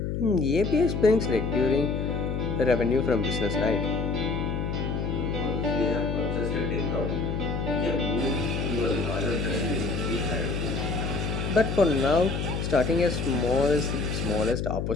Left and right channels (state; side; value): noise; left; hum, 2 dB below the sound